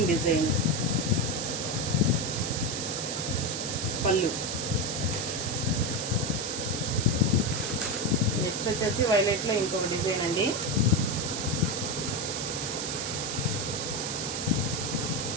design. పళ్ళు నెక్స్ట్ వచ్చేసి వైలెట్ లో ఇంకొక డిజైన్ అండి.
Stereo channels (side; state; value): right; noise; hiss, 3 dB below the sound